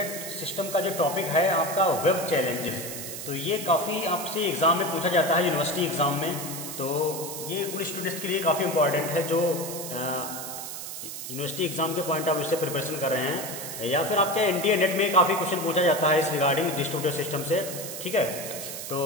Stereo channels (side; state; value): right; noise; hiss, 8 dB below the sound